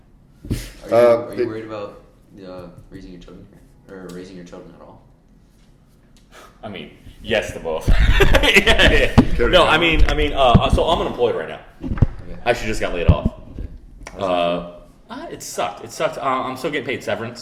Are you worried about raising your children here? Or raising your children at all? I mean, yes to both. Yeah. No, I mean, so I'm unemployed right now. Okay. I actually just got laid off. How's It sucked. It sucked. I'm still getting paid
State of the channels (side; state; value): both; identical; correlation 1.00